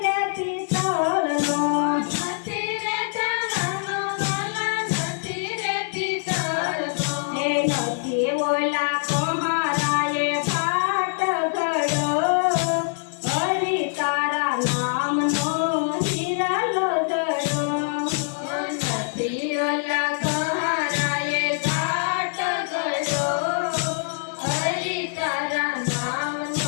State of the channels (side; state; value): right; silent; 63 dB below the other